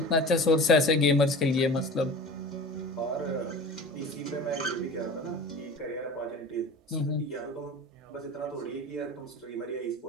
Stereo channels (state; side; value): normal; both; correlation 0.37